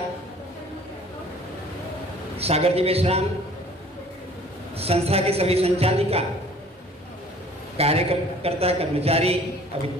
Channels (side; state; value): both; normal; correlation 0.52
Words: सागर जी मेश्राम, संस्था के सभी संचालिका, कार्यकर्ता, कर्मचारी,